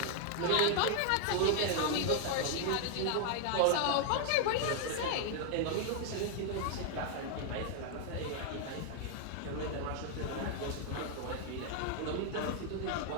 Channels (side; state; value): both; different; correlation 0.00